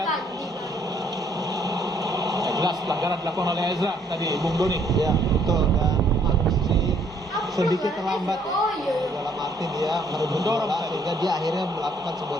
Jelas pelanggaran dilakukan oleh Ezra tadi, Bung Doni. Ya betul, dan masih sedikit terlambat ya. Dalam arti dia merebut Mendorong bola tadi. sehingga dia akhirnya melakukan sebuah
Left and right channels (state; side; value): normal; both; correlation 0.65